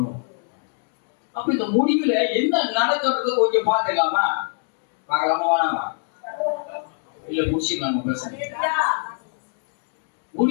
அப்ப இந்த முடிவுல என்ன நடக்கிறது கொஞ்சம் பார்த்துக்கலாமா? பார்க்கலாமா வேணாமா? இல்ல முடிச்சுக்கலாம். பிரச்சனை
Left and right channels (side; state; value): right; silent; digital silence